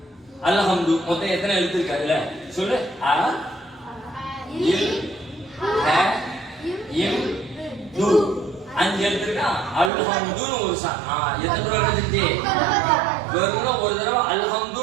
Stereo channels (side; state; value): left; drops out; at 9.9 s